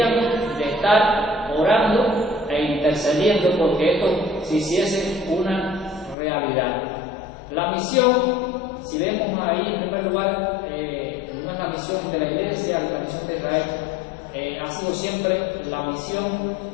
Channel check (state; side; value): drops out; right; at 6.2 s